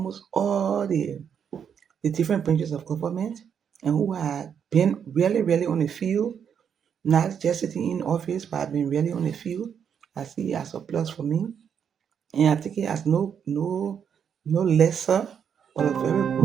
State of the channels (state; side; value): quieter; left; 7.8 dB